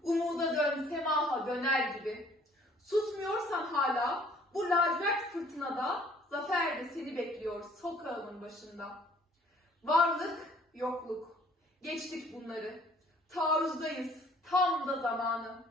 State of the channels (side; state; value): both; normal; correlation 0.58